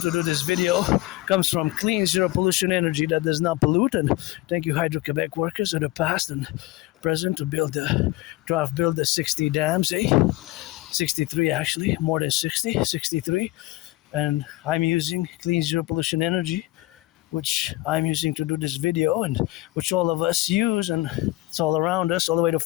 do this video, comes from clean, zero pollution energy that does not pollute. And thank you, Hydro-Quebec workers of the past and present, to build the 60 dams, 63 actually, more than 60, 63. And I'm using clean, zero pollution energy, which I'm using to do this video, and which all of us use, and it's all around us, all the way to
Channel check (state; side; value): quieter; right; 18.4 dB